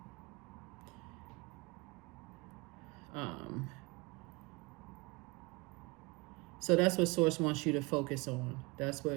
So that's what Source wants you to focus on. That's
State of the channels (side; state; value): left; quieter; 26.0 dB